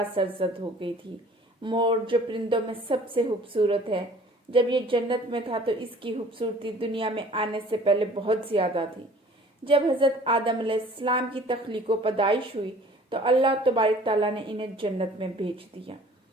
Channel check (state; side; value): normal; both; correlation 0.50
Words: سرزد ہو گئی تھی؟ مور جو پرندوں میں سب سے خوبصورت ہے، جب یہ جنت میں تھا تو اس کی خوبصورتی دنیا میں آنے سے پہلے بہت زیادہ تھی۔ جب حضرت آدم علیہ السلام کی تخلیق و پیدائش ہوئی تو اللہ تبارک تعالیٰ نے انہیں جنت میں بھیج دیا۔